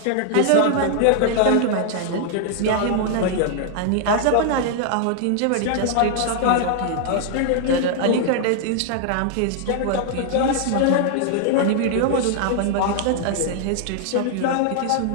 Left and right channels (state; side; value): different; both; correlation 0.00